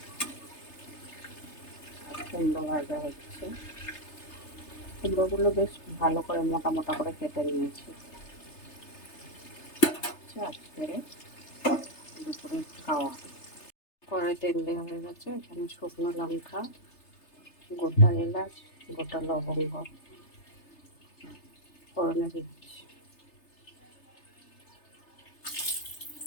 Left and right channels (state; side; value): late; right; 3.3 ms